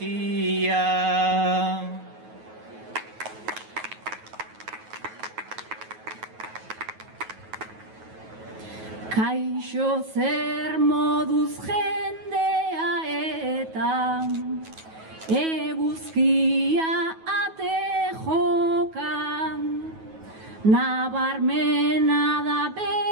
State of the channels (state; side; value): late; left; 9.3 ms